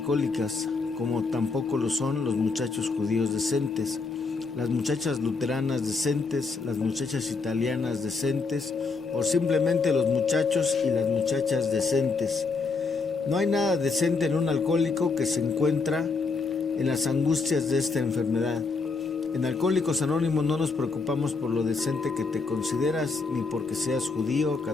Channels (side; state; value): right; quieter; 4.3 dB